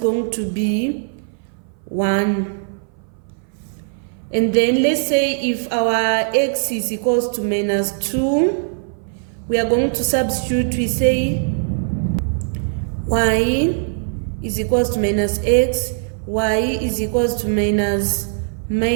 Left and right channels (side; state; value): left; silent; 59 dB below the other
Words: to be 1. And then let's say if our X is equals to minus 2, we are going to substitute. We say Y is equals to minus X, Y is equals to minus